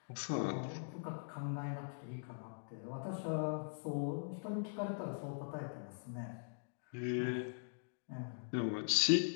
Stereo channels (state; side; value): silent; right; digital silence